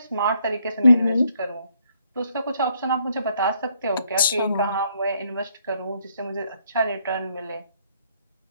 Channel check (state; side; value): inverted; both; correlation -0.70